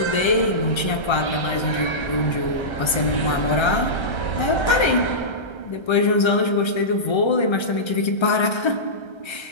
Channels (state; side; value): late; right; 1.3 ms